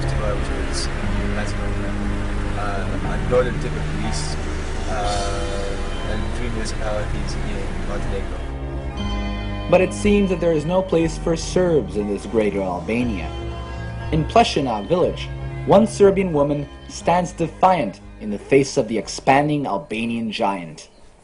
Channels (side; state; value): both; identical; correlation 1.00